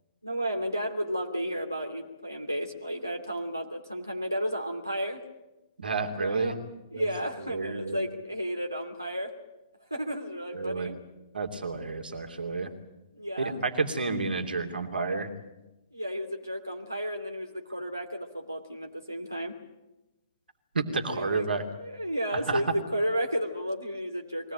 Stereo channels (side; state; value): both; inverted; correlation -0.77